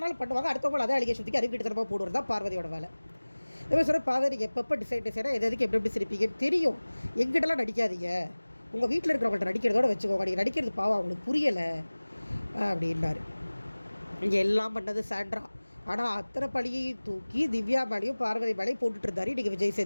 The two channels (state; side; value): inverted; both; correlation -1.00